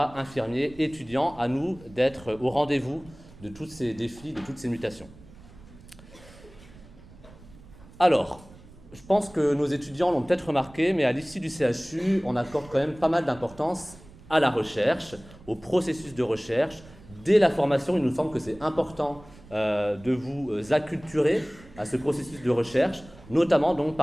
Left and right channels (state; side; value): noise; right; rumble, 21 dB below the sound